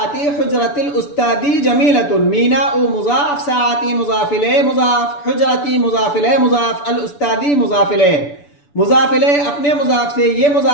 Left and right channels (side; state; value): right; late; 6.9 ms